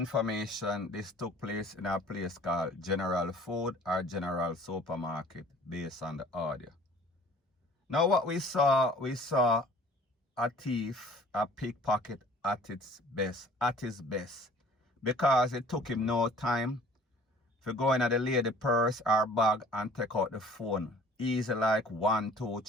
this took place in a place called General Food or General Supermarket, based on the audio. Now, what we saw a thief, a pickpocket at his best, because it took him no time to go in at the lady purse or bag and take out the phone. Easy like 1, 2,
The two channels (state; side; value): normal; both; correlation 0.50